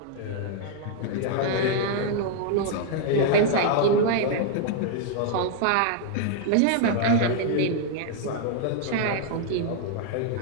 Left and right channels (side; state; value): both; different; correlation 0.00